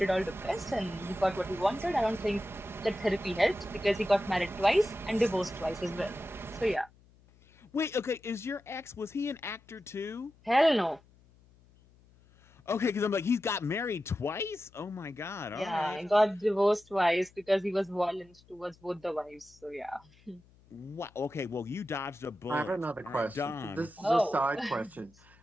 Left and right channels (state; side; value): noise; left; hum, 28 dB below the sound